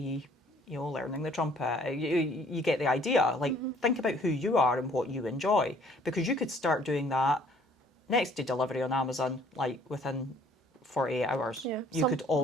you know, learning the trumpet. You get the idea. Like, think about who you are and what you enjoy, because you could start doing that next day delivery on Amazon, like within 48 hours. Yeah, you could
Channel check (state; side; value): normal; both; correlation 0.58